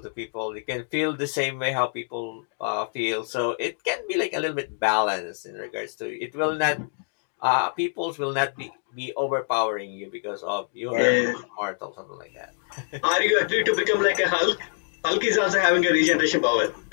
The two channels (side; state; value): right; silent; 61 dB below the other